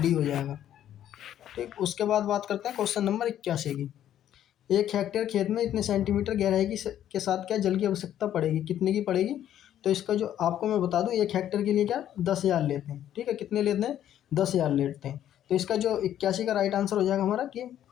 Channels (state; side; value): quieter; right; 11.1 dB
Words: हो जाएगा। ठीक, उसके बाद बात करते हैं क्वेश्चन नंबर 81 की। 1 हेक्टेयर खेत में इतने सेंटीमीटर गहराई के साथ क्या जल की आवश्यकता पड़ेगी? कितने की पड़ेगी? तो इसका जो आपको मैं बता दूं 1 हेक्टेयर के लिए क्या 10,000 लेते हैं। ठीक है, कितने लेते हैं? 10,000 लेते हैं। तो इसका जो 81 का राइट आंसर हो जाएगा हमारा कि